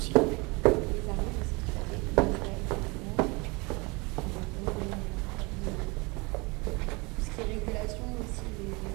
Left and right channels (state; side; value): quieter; left; 27.2 dB